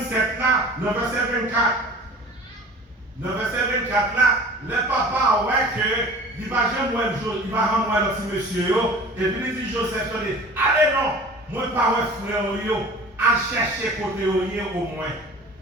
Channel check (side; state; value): both; normal; correlation 0.42